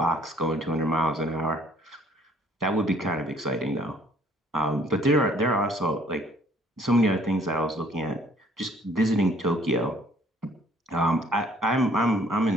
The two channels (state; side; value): normal; both; correlation 0.59